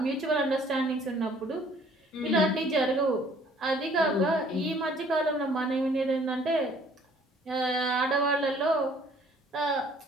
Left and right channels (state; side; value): normal; both; correlation 0.58